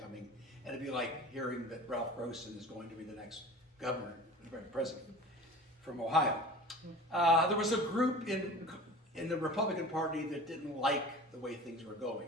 and it'd be like hearing that Ralph Grossen is going to be the next governor, president from Ohio. There was a group in the Republican Party that didn't like the way things were going,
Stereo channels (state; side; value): normal; both; correlation 0.39